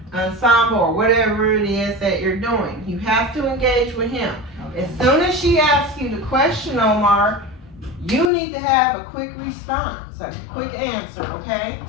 ensemble or whatever it is that you're doing? You have to engage with him. Okay. As soon as she asks you the question, Omar, you need to have a quick response, a quick answer, okay?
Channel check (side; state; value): right; drops out; at 8.3 s